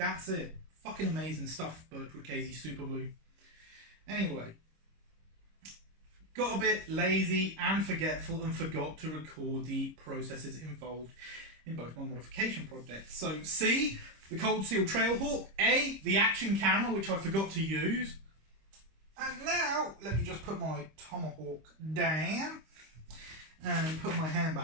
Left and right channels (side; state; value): left; late; 26 ms